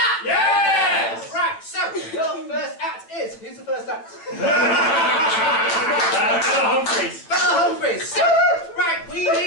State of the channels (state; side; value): late; right; 9.1 ms